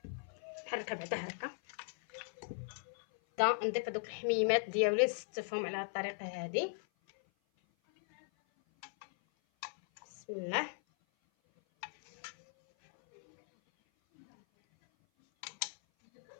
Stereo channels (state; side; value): silent; right; 52 dB below the other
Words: نحركها بعدا هكا. نضيف هذوك الحميمات ديالي نستفهم على هذه الطريقه هذه. بسم الله.